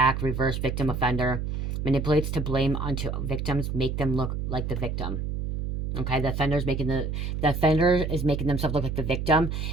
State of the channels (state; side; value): noise; right; hum, 3 dB below the sound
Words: reverse, victim, offender. Manipulates to blame onto victims, make them look like the victim. Okay, the offender is making themselves look like the victim